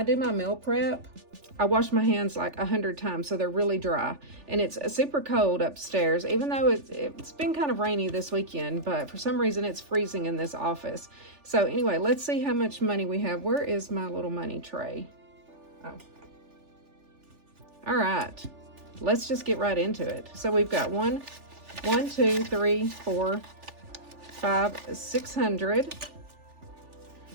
do my meal prep, I wash my hands like 100 times so they're really dry. And it's super cold upstairs, even though it's been kind of rainy this weekend, but for some reason it's freezing in this office. So anyway, let's see how much money we have. Where is my little money tray? Oh. All right, let's just get right into it. So we've got 1, 2, 3, 4, 5, 600.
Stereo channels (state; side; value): late; left; 3.4 ms